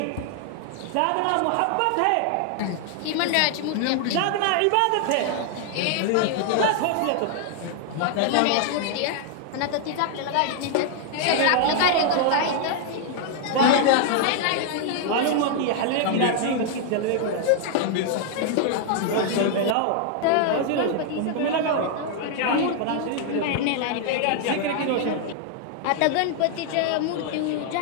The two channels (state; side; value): different; both; correlation 0.00